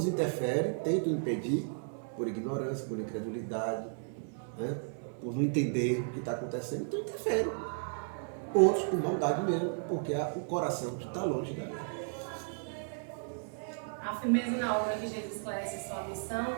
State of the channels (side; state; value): left; silent; 55 dB below the other